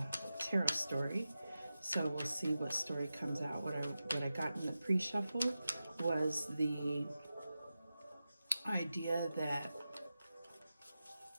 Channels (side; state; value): both; inverted; correlation -0.93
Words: tarot story. So we'll see what story comes out. What I got in the pre-shuffle was the idea that